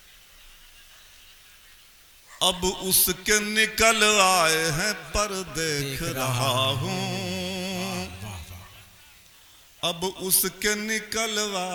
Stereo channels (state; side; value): identical; both; correlation 1.00